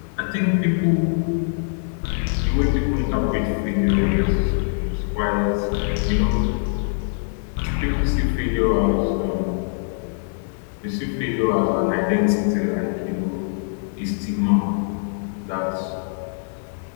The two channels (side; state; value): right; silent; digital silence